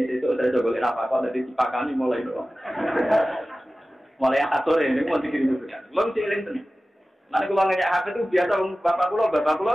sesuk saya golek apa kok dadi dipakani mulai lho. Mulai akad sore niku mau dikirimi berkat. Kula jeleng tenan. Nek kula ngejak HP itu biasa bapak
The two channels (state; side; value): normal; both; correlation 0.96